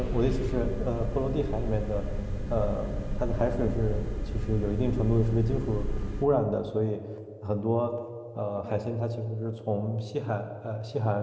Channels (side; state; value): both; identical; correlation 1.00